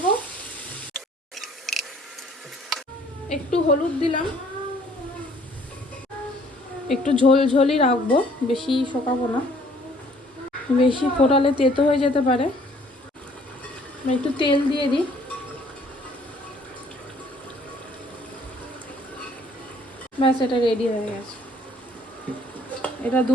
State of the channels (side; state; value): both; normal; correlation 0.59